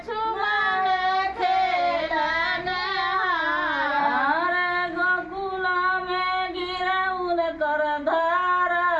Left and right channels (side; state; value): both; identical; correlation 1.00